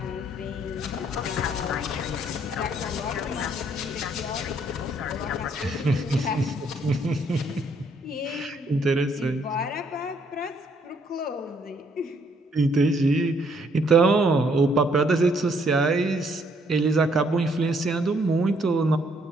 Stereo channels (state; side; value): normal; both; correlation 0.68